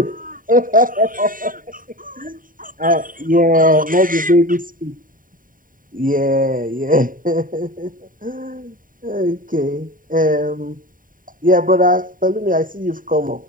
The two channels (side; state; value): left; late; 0.40 ms